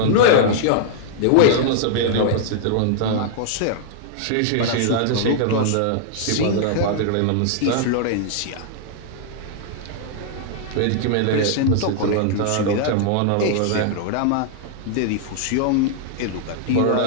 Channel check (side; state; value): both; different; correlation -0.01